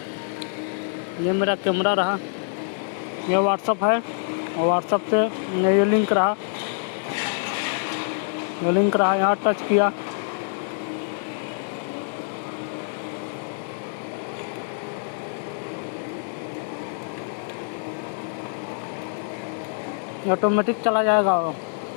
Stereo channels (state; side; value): silent; right; 61 dB below the other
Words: ये मेरा कैमरा रहा, ये व्हाट्सअप है और व्हाट्सअप से ये लिंक रहा, यहाँ टच किया। ऑटोमेटिक चला जाएगा,